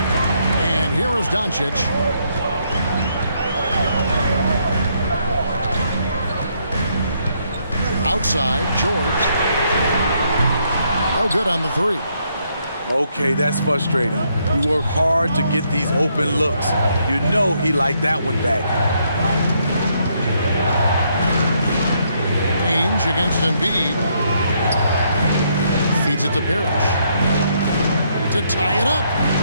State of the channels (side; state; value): both; inverted; correlation -0.73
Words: And here is Doncic. Outside, George. Oh, good on the 3. Okay, that's frustrating. You work hard to get these open looks. You know he liked that one back. Ainge against Embiid. Feeds it to Parrish. To tie it up.